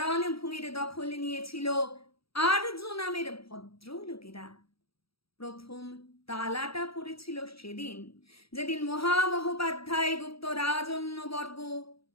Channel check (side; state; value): right; late; 0.76 ms